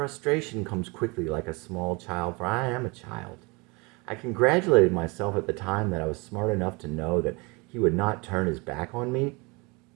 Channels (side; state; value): left; quieter; 27.8 dB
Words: comes quickly like a small child, for I am a child. I congratulated myself at the time that I was smart enough to know that he would not turn his back on me.